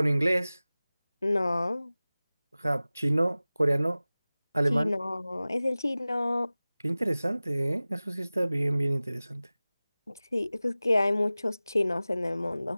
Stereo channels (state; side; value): inverted; both; correlation -0.98